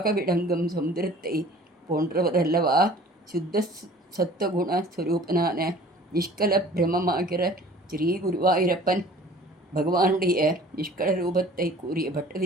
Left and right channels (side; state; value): both; normal; correlation 0.48